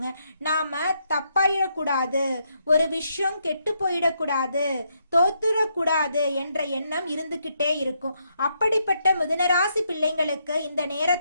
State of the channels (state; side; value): inverted; both; correlation -0.77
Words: நாம தப்பாயிடக்கூடாது, ஒரு விஷயம் கெட்டு போயிடக்கூடாது, தோத்துடக்கூடாது என்ற எண்ணம் இருந்துகிட்டே இருக்கும். அப்படிப்பட்ட மிதுன ராசி பிள்ளைங்களுக்கு இந்த